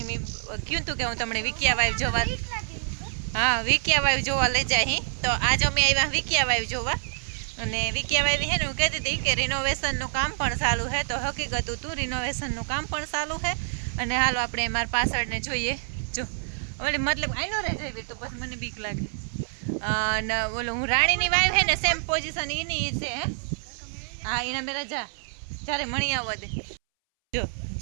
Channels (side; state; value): left; silent; 60 dB below the other